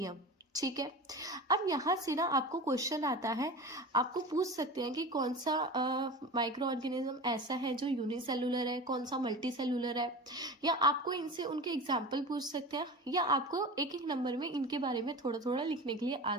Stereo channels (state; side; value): normal; both; correlation 0.32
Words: ठीक है। अब यहाँ से ना आपको क्वेश्चन आता है, आपको पूछ सकते हैं कि कौन सा माइक्रो ऑर्गेनिज्म ऐसा है जो यूनिसेलुलर है, कौन सा मल्टी सेलुलर है, या आपको इनसे उनके एग्जाम्पल पूछ सकते हैं, या आपको एक एक नंबर में इनके बारे में थोड़ा थोड़ा लिखने के लिए आ